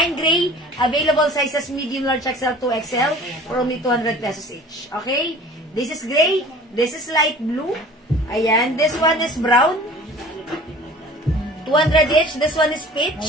gray, available sizes medium, large, XL, 2XL, for only 200 pesos each. Okay? This is gray, this is light blue. Ayan, this one is brown. 200 each, this one is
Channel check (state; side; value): normal; both; correlation 0.45